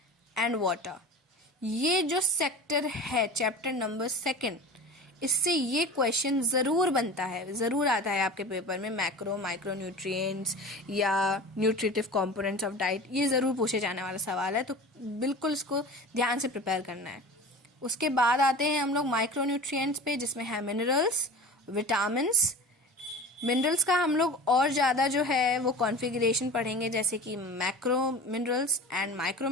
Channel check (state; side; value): normal; both; correlation 0.35